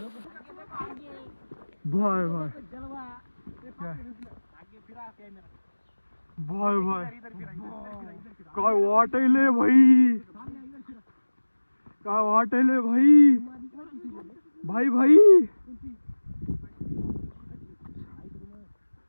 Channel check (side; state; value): both; inverted; correlation -1.00